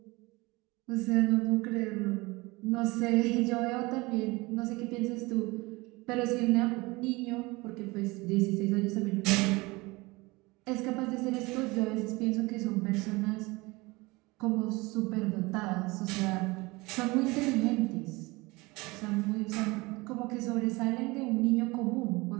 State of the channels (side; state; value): left; quieter; 23.2 dB